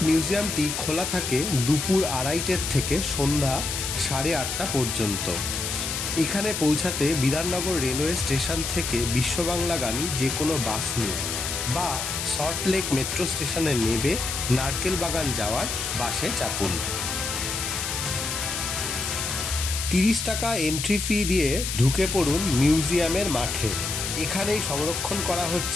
মিউজিয়ামটি খোলা থাকে দুপুর 2:30 থেকে সন্ধ্যা 8:30 পর্যন্ত। এখানে পৌঁছাতে বিধাননগর রেলওয়ে স্টেশন থেকে বিশ্ববাংলাগামী যে কোনো বাস নিন বা সল্টলেক মেট্রো স্টেশনে নেমে নারকেল বাগান যাওয়ার বাসে চাপুন। 30 টাকা এন্ট্রি ফি দিয়ে ঢুকে পড়ুন মিউজিয়ামের মাঠে। এখানেই সংরক্ষণ করা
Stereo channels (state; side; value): noise; left; hiss, 3 dB below the sound